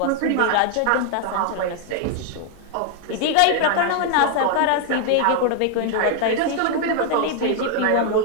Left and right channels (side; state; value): both; different; correlation 0.00